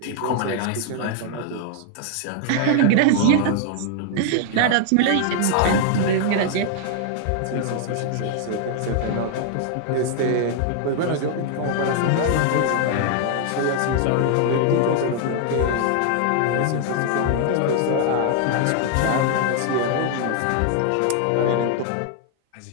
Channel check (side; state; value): both; different; correlation 0.00